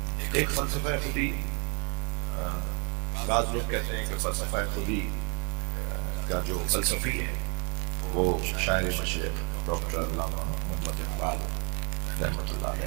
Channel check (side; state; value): left; quieter; 35.5 dB